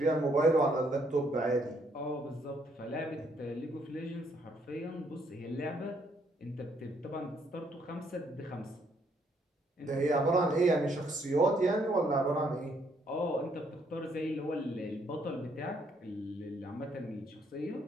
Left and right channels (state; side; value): normal; both; correlation 0.70